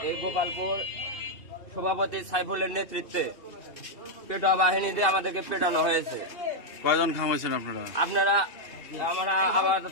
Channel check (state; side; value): late; right; 2.8 ms